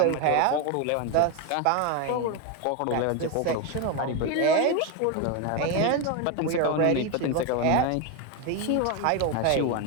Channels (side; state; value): both; different; correlation 0.02